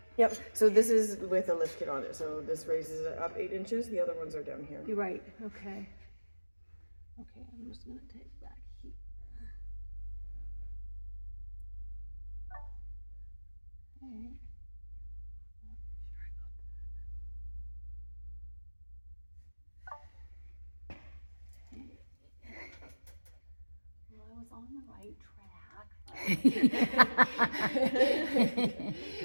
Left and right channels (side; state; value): both; inverted; correlation -1.00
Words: Yep. So this is with a lift kit on it. So this raises it up 8 inches. The other ones are down here. You're right, okay. Okay, I'm just gonna take back here. Okay. Well, I was on the right track.